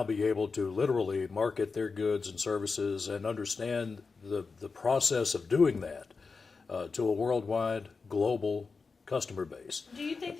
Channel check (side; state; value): right; quieter; 4.6 dB